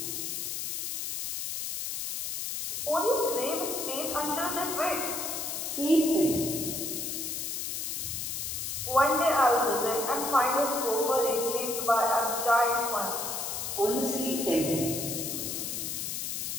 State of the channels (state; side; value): noise; left; hiss, 3 dB below the sound